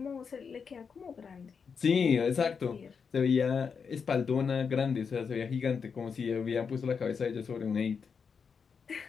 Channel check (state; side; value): quieter; right; 6.0 dB